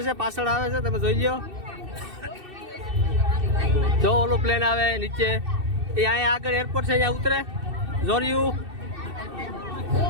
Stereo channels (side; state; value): left; late; 2.6 ms